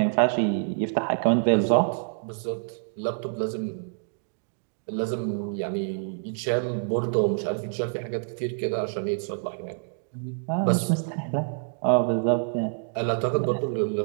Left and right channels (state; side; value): silent; left; digital silence